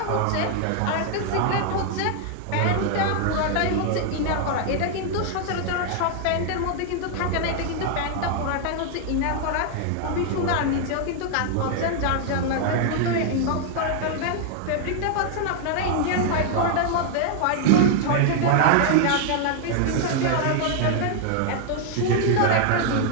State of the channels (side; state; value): both; different; correlation 0.00